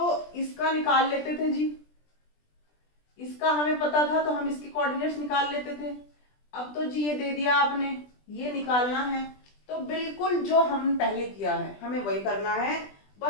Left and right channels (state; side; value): late; right; 20 ms